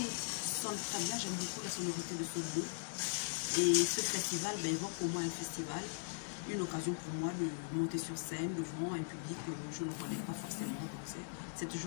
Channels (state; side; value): silent; right; 51 dB below the other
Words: sonne très bien. J'aime beaucoup la sonorité de ce mot. Et ce festival évoque pour moi un festival, une occasion pour moi de monter sur scène devant un public que je ne connais pas forcément. Donc c'est